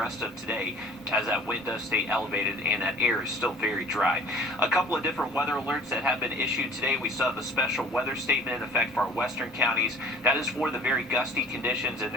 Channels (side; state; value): both; normal; correlation 0.48